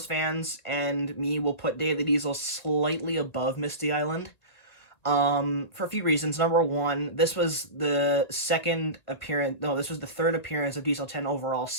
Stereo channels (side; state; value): right; late; 1.7 ms